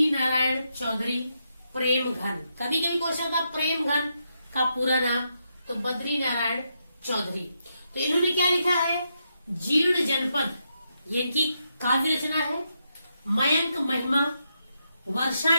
नारायण चौधरी प्रेम घन। कभी कभी क्वेश्चन था प्रेम घन का पूरा नाम, तो बद्री नारायण चौधरी। तो इन्होंने क्या लिखा है, जीर्ण जनपद, ये इनकी काव्य रचना है। मयंक महिमा, वर्षा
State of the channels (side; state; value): both; inverted; correlation -0.82